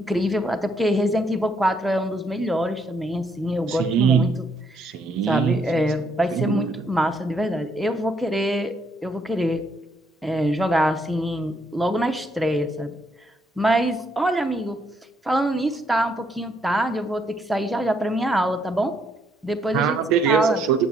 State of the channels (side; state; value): both; normal; correlation 0.72